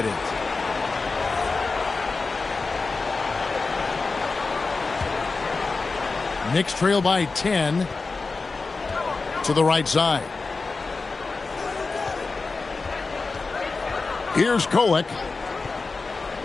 Knicks trail by 10 to the right side. Here's Kolek.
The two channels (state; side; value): quieter; right; 4.0 dB